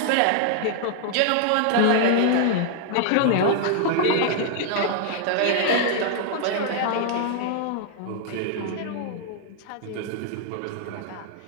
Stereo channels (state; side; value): different; both; correlation 0.00